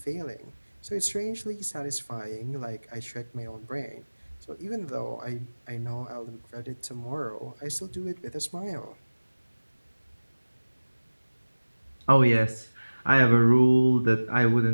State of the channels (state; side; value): inverted; both; correlation -1.00